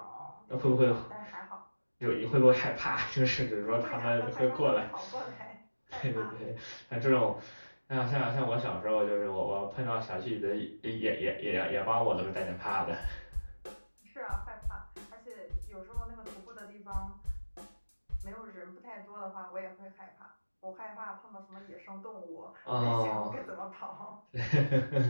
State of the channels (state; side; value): inverted; both; correlation -1.00